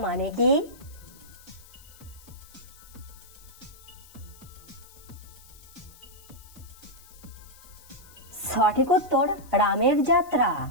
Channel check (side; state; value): left; noise; hiss, 22 dB below the sound